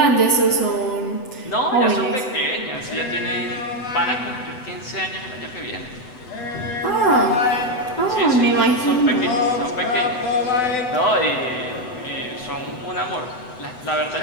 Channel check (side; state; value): right; late; 8.0 ms